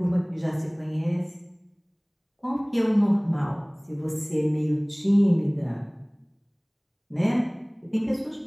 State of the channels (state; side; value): identical; both; correlation 1.00